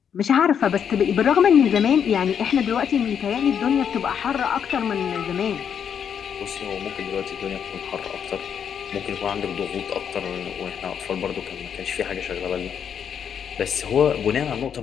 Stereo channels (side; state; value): right; quieter; 7.9 dB